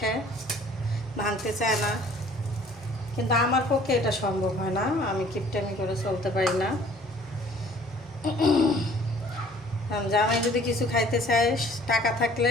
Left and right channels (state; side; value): normal; both; correlation 0.54